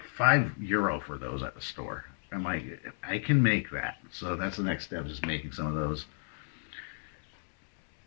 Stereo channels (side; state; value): right; silent; digital silence